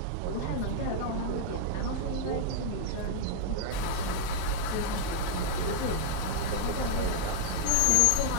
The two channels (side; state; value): both; different; correlation 0.00